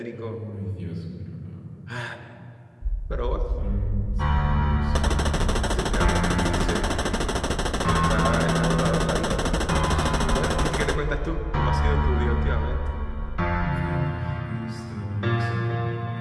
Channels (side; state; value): both; identical; correlation 1.00